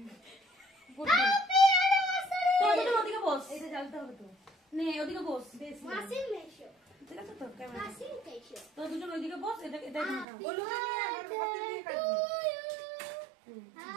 হ্যাপি অ্যানিভার্সারি তো ওদিকে বস এটা জ্বালতে হবে তো নে ওদিকে বস মাসির মেশো ঠিক আছে তো ক্যামেরা মাসির মেশো তো দুজন ওইদিকে বস এটা এটা গোলুকে নিয়ে হাতে দিয়ে কাটবি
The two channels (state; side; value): drops out; left; at 10.2 s